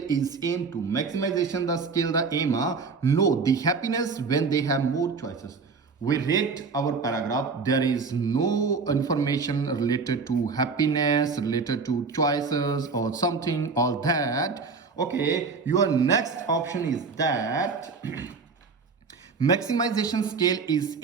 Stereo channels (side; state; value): left; quieter; 4.8 dB